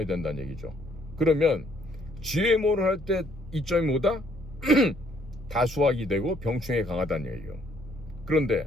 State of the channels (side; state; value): both; normal; correlation 0.66